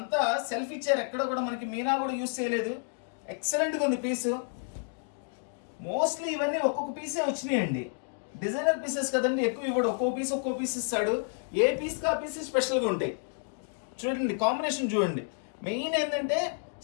సెల్ఫ్ ఇచ్చారు, ఎక్కడ కూడా మనకి మీనా కూడా యూజ్ చేయలేదు. ఎక్సలెంట్గా ఉంది పీసు. మోస్ట్లీ ఇవన్నీ ఒక్కొక్క పీసే వచ్చినాయండి. డిజైనర్ పీసెస్ కదండి, ఎక్కువ ఇవ్వడు, ఒక్కో పీస్ ఇస్తాడు. ఏ పీస్కి ఆ పీస్ స్పెషల్గా ఉంటాయి. చూడండి కాంబినేషన్ చూడండి. మెయిన్ ఏంటంటే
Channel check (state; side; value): silent; right; 58 dB below the other